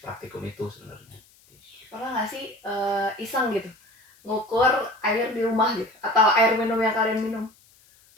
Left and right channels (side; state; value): left; noise; hiss, 30 dB below the sound